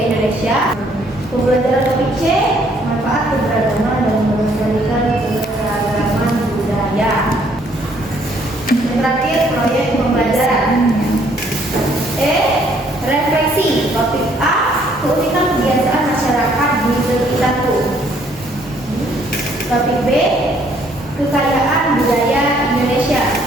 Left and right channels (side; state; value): both; normal; correlation 0.65